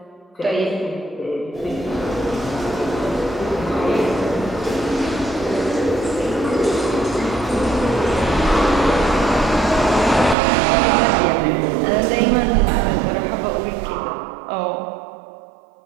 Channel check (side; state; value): left; drops out; at 10.4 s